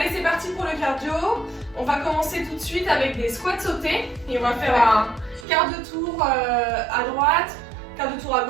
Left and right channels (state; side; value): drops out; left; at 5.5 s